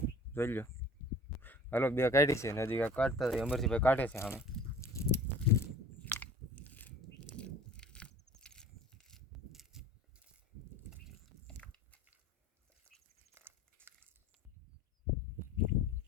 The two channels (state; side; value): normal; both; correlation 0.45